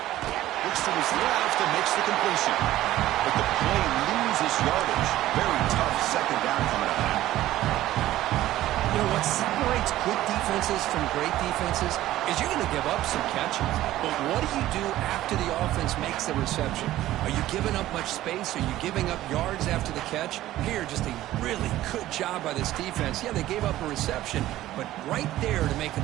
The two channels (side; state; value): left; quieter; 14.7 dB